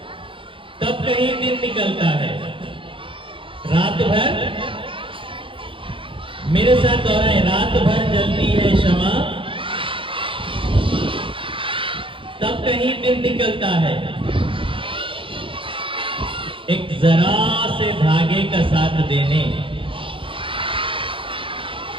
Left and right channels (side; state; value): left; late; 0.25 ms